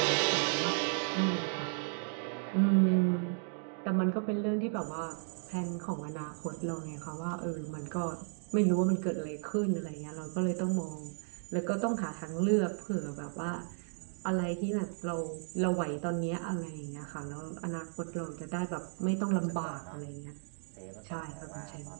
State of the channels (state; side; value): silent; left; 55 dB below the other